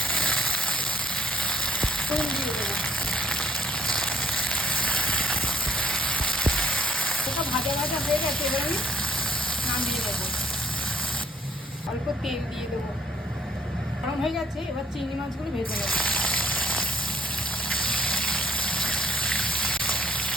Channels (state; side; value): normal; both; correlation 0.62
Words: তেল দিয়ে দেবো, ওটা ভাজা ভাজা হয়ে গেছে, এবার আমি নামিয়ে দেবো। অল্প তেল দিয়ে দেবো, গরম হয়ে গেছে, এবার চিংড়ি মাছগুলো ভেজে নেবো।